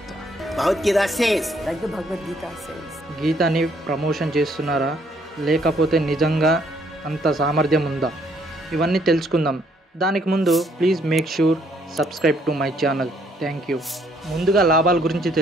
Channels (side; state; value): both; normal; correlation 0.67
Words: Bhagavad Gita says. Like the Bhagavad Gita says. గీతని ప్రమోషన్ చేస్తున్నారా, లేకపోతే నిజంగా అంత సామర్థ్యం ఉందా? ఇవన్నీ తెలుసుకుందాం. దానికి ముందు please make sure subscribe to my channel. Thank you. ముందుగా లాభాల గురించి